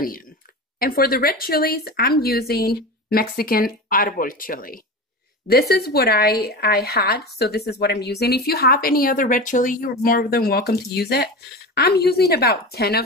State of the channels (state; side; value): normal; both; correlation 0.27